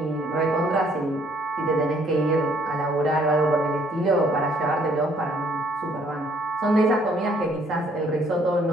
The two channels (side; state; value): both; normal; correlation 0.64